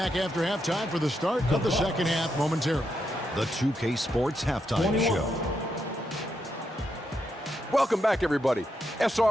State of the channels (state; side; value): normal; both; correlation 0.82